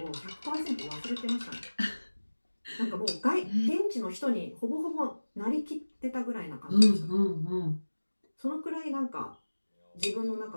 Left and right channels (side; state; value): both; inverted; correlation -1.00